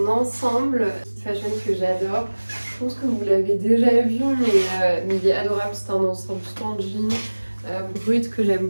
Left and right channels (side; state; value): both; inverted; correlation -1.00